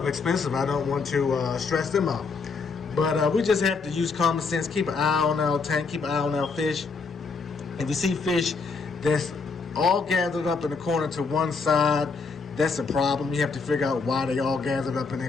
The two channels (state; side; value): quieter; right; 4.7 dB